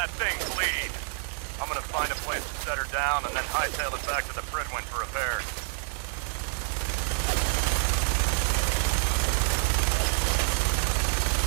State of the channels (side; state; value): left; silent; digital silence